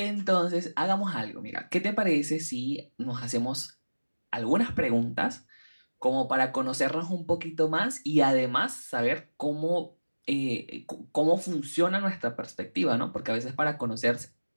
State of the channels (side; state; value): both; inverted; correlation -1.00